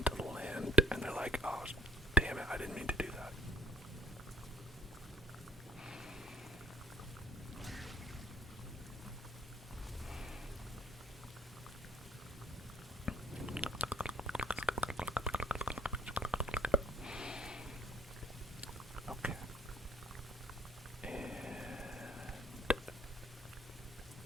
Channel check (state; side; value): normal; both; correlation 0.61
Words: the land, and they're like, oh, damn it, I didn't mean to do that. Okay. And